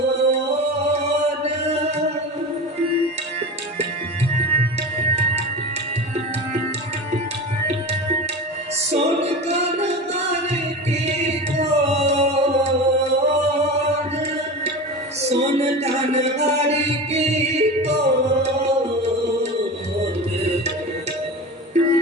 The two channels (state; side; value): normal; both; correlation 0.29